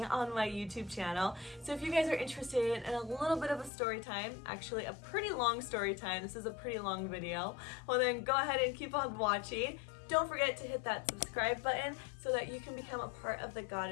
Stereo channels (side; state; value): right; drops out; at 3.7 s